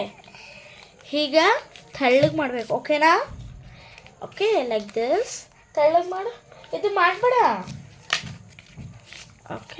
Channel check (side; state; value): both; identical; correlation 1.00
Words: ಹೀಗ ತೆಳ್ಳಗೆ ಮಾಡಬೇಕು. ಓಕೆನಾ? ಓಕೆ, ಲೈಕ್ ದಿಸ್ ತೆಳ್ಳಗೆ ಮಾಡು. ಇದು ಮಾಡಬೇಡ.